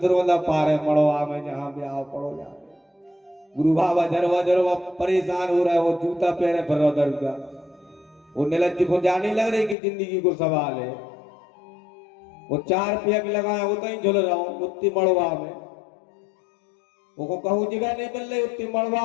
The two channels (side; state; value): right; drops out; at 9.8 s